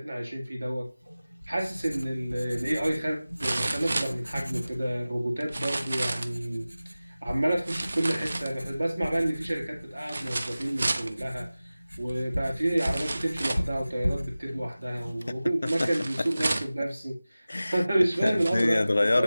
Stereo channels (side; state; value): both; inverted; correlation -0.97